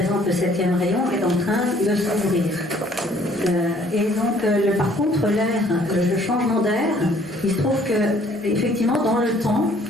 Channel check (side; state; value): both; normal; correlation 0.59